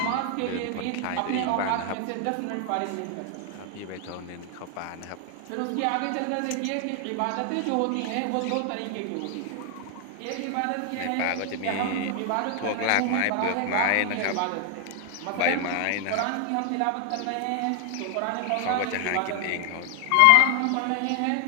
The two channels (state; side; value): different; both; correlation 0.00